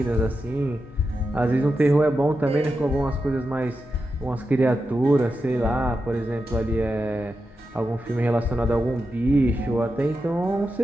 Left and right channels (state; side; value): normal; both; correlation 0.89